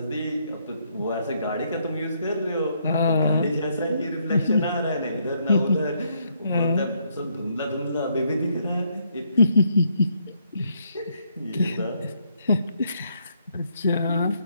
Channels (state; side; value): inverted; both; correlation -0.73